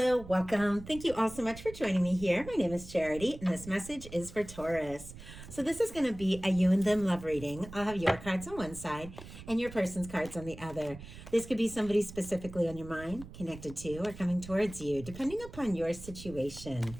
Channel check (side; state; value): right; noise; rumble, 15 dB below the sound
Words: welcome. Thank you all so much for joining me here. My name is Charity, and this message is for Taurus. So this is going to be a you and them love reading. I'll have your cards on one side and your person's cards on the other. This could be somebody specifically on your mind, connected to, or coming towards you, depending upon your situation.